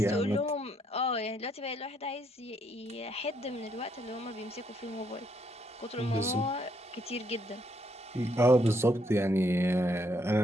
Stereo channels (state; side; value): normal; both; correlation 0.73